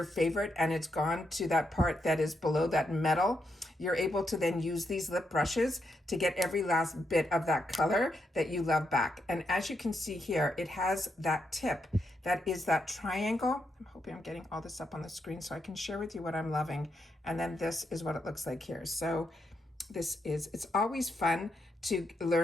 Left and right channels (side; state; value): both; normal; correlation 0.81